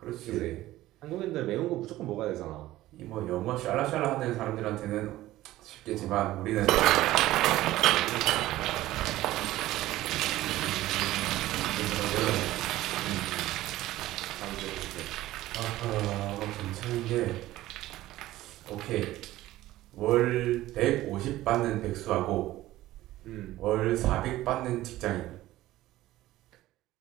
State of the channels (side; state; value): left; quieter; 15.9 dB